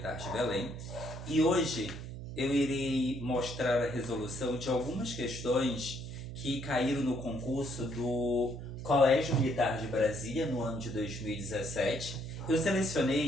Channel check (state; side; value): noise; right; hum, 11 dB below the sound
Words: de Belém. E hoje eu irei mostrar a resolução de algumas questões que caíram no concurso do Colégio Militar de Brasília no ano de 2017. Eu